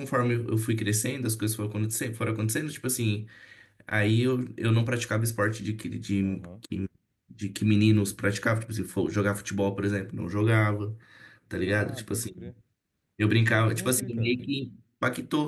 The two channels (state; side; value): identical; both; correlation 1.00